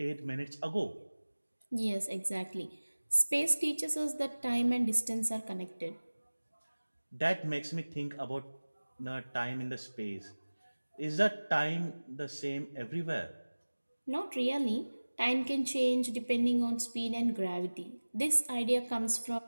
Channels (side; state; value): both; inverted; correlation -1.00